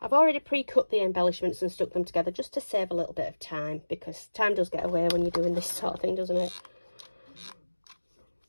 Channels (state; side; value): inverted; both; correlation -1.00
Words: already pre-cut the embellishments and stuck them together just to save a little bit of time, because time does get away when you're doing this sort of thing, doesn't it?